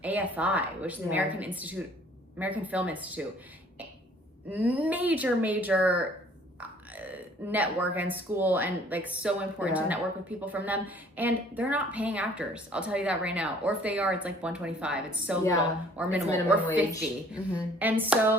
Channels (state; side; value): normal; both; correlation 0.56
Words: AFI, which is the American Film Institute. Major network and school and like so important to network with people from them, and they're not paying actors, I'll tell you that right now. Or if they are, it's like $125. It's so little, or minimum or wage. 50. And